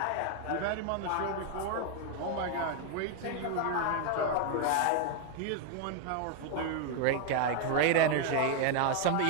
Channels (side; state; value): both; different; correlation 0.01